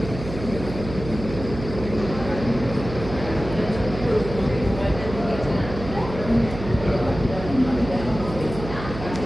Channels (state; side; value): noise; right; hum, 9 dB below the sound